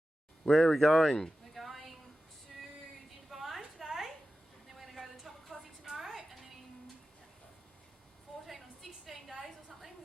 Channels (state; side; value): normal; both; correlation 0.94